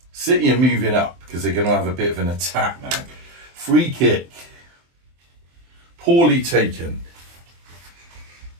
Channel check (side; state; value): left; late; 23 ms